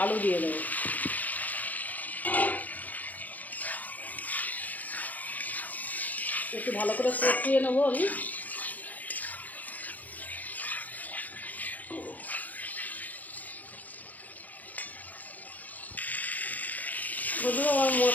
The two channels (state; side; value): late; right; 0.080 ms